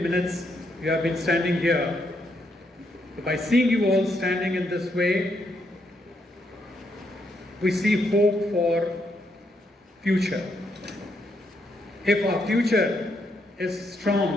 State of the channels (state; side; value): normal; both; correlation 0.77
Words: you have been standing here. So by seeing you all standing in this way, we see hope for future. If our future is